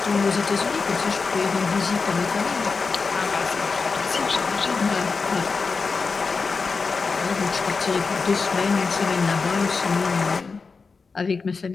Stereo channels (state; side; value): quieter; right; 4.6 dB